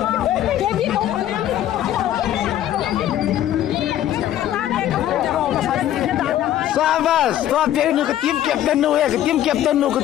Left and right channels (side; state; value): right; quieter; 12.2 dB